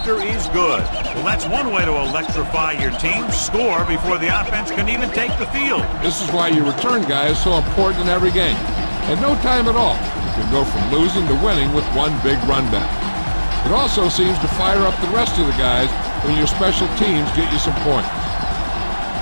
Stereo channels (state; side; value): inverted; both; correlation -1.00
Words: is good. Well, that's one way to electrify your team. Score before the offense can even take the field. This is why your return guy is so important in every game. At no time at all, you can go from losing to winning with one big run back. It also seems to fire up the rest of the guys when your special teams get you some points.